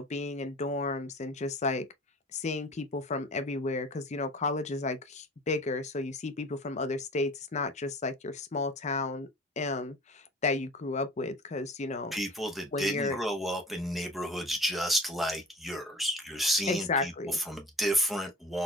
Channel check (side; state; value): both; normal; correlation 0.41